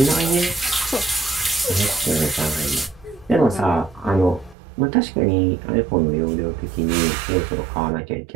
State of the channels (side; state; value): left; drops out; at 4.5 s